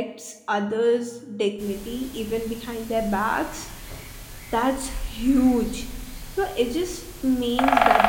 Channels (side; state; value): both; identical; correlation 1.00